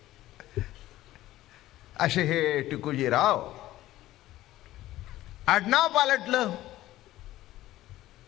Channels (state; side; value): quieter; right; 15.4 dB